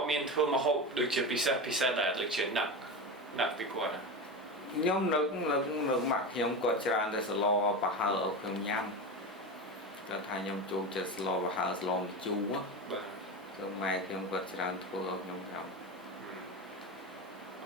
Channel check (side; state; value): both; normal; correlation 0.23